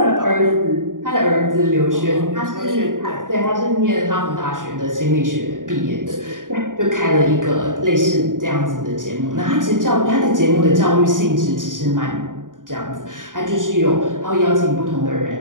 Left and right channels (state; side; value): late; left; 0.89 ms